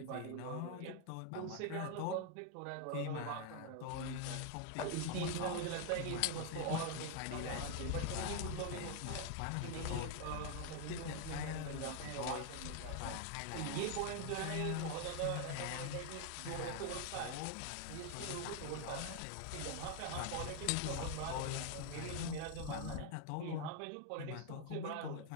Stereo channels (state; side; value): different; both; correlation 0.01